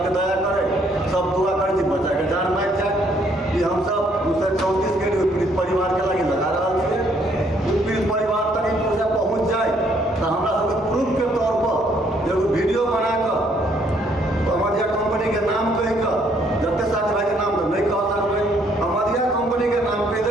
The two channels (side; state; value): both; normal; correlation 0.67